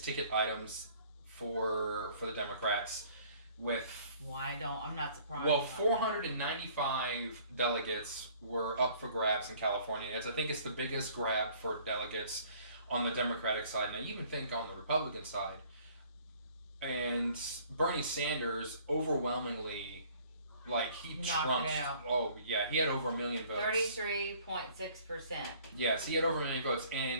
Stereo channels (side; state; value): both; inverted; correlation -0.56